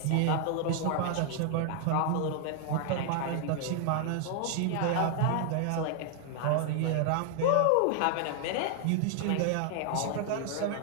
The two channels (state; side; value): different; both; correlation 0.00